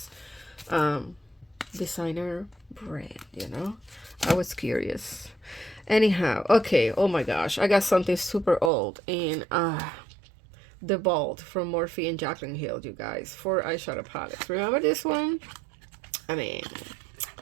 designer brand, you know. I was curious. Anyhow, okay, oh my gosh, I got something super old, and the Vault from Morphe and Jaclyn Hill, you guys, for eyeshadow palettes. Remember this one? I mean,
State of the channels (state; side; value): drops out; left; at 8.7 s